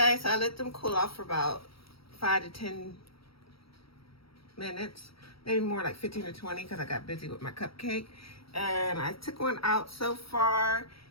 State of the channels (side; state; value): right; late; 0.75 ms